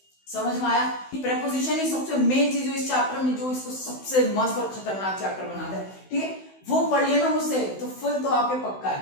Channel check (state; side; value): late; right; 16 ms